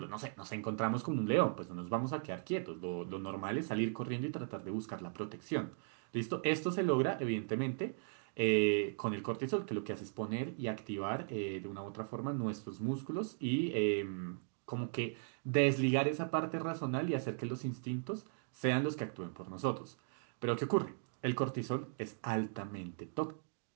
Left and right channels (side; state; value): left; silent; digital silence